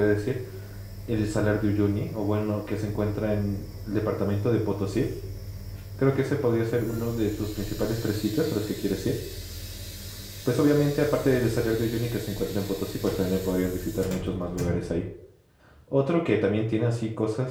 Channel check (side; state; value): both; identical; correlation 1.00